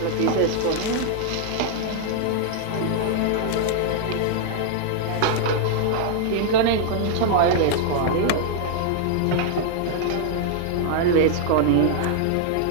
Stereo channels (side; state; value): both; different; correlation -0.01